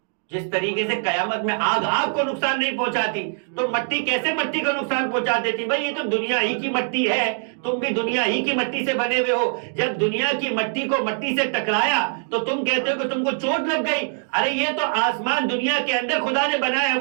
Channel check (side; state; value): left; silent; 63 dB below the other